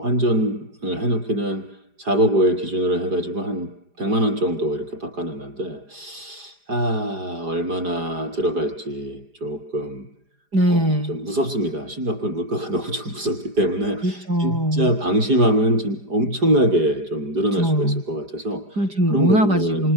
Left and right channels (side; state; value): left; late; 4.9 ms